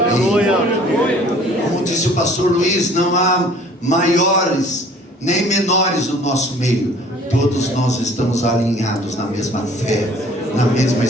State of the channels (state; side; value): normal; both; correlation 0.52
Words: Como disse o pastor Luiz, não há maiores nem menores no nosso meio. Todos nós estamos alinhados na mesma fé, na mesma